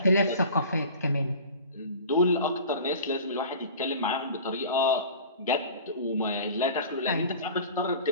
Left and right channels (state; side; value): inverted; both; correlation -0.40